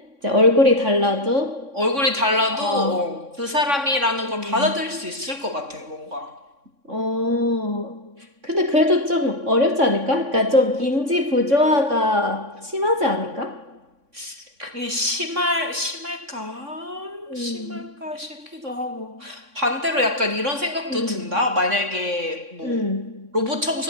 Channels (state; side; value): late; left; 3.6 ms